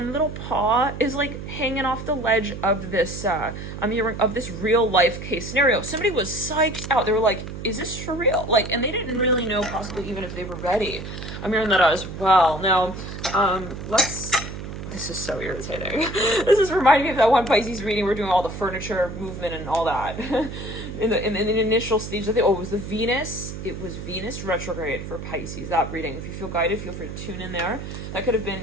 little paw is like hanging off the ledge of this I'm hearing of this real life case scenario. Somebody was psyched out. They were like, is this for real? Like, and they didn't really know possibly even if they were ready. I'm hearing that as well. Now, this is so irritating. This is reminding me of that one Pisces reading. We're doing all the furniture movement and all that. in the initial stage of it was the Venus. It was Venus retrograde for Pisces, that reading. If you feel guided, feel free to tune in there. That could have been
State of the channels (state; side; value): noise; right; hum, 9 dB below the sound